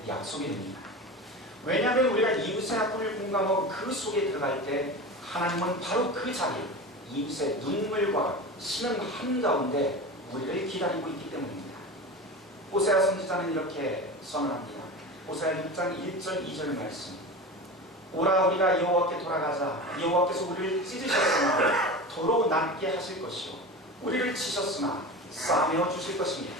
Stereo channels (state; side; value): normal; both; correlation 0.29